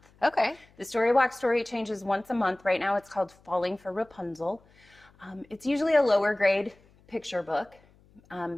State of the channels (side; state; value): left; noise; hum, 30 dB below the sound